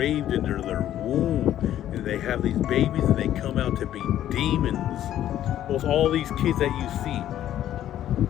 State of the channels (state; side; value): quieter; right; 11.9 dB